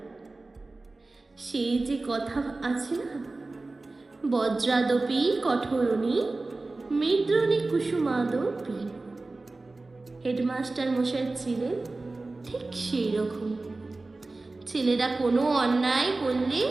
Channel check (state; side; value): quieter; left; 3.3 dB